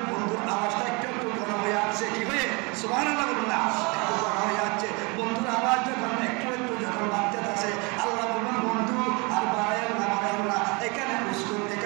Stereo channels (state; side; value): quieter; left; 28.8 dB